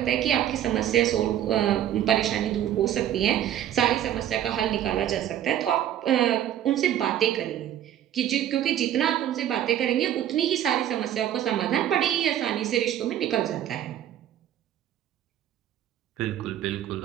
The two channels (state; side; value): quieter; left; 11.3 dB